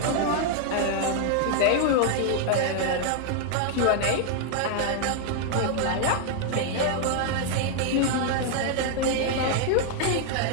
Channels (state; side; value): different; both; correlation 0.00